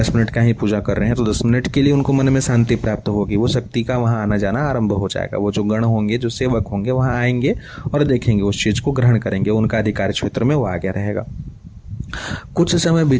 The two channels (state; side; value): identical; both; correlation 1.00